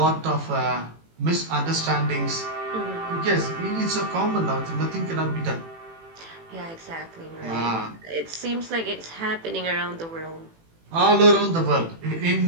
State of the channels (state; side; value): late; left; 18 ms